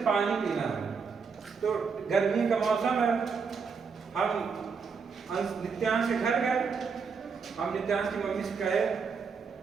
पानी पीना है, तो गर्मी का मौसम है, हम नित्यांश के घर गए, हम नित्यांश की मम्मी से कहे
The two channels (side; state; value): left; quieter; 5.6 dB